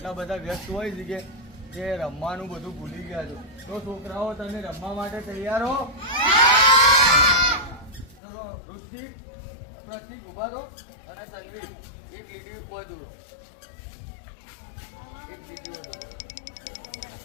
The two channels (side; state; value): right; drops out; at 8.2 s